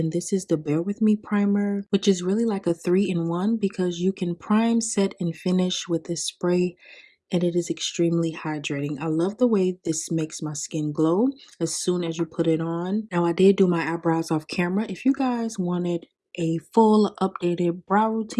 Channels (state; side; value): identical; both; correlation 1.00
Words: this is the Bear With Me primer, which is really like a 3-in-1 because you can prime, set, and finish with this spray, and it is extremely hydrating. I love the way this makes my skin glow as soon as you put it on. Now, I did do my eyebrows off camera. If you guys wanted a full updated brow